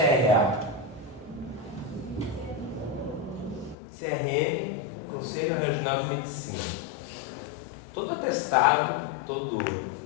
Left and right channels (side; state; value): right; drops out; at 3.8 s